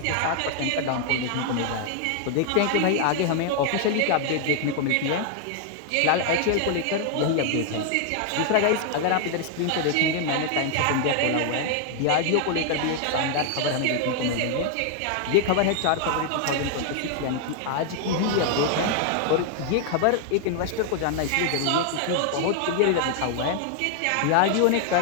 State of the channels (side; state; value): both; different; correlation 0.00